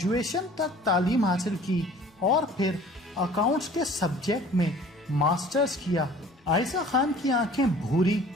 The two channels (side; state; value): both; normal; correlation 0.49